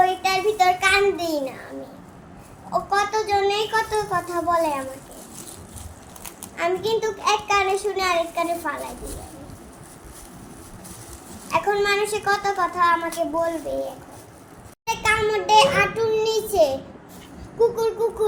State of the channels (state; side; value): identical; both; correlation 1.00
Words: ভিতর কান দিই না। আমি কত জনে কত কথা বলে আমাকে, আমি কিন্তু এক কানে শুনে আরেক কানে ফালাই দিই। এখন মানুষে কত কথা আমাকে বলবে। এখন কামড়ে আটুর নিচে কুকুর